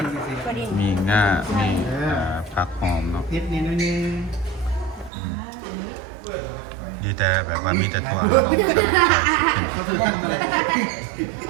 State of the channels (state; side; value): drops out; left; at 5.1 s